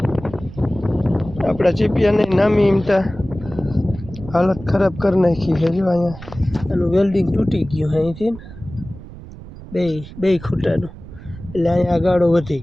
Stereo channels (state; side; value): noise; right; rumble, 15 dB below the sound